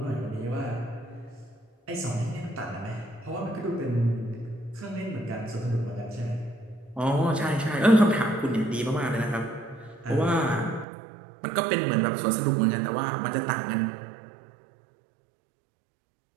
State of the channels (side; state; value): left; drops out; at 10.9 s